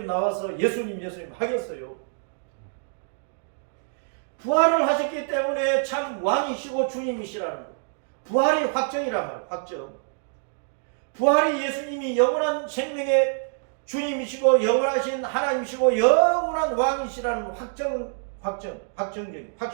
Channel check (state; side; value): silent; left; digital silence